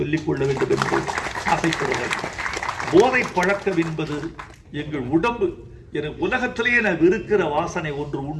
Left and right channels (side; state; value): both; identical; correlation 1.00